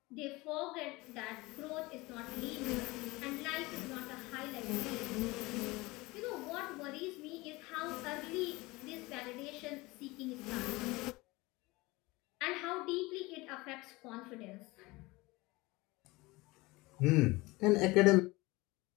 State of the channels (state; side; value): quieter; right; 22.2 dB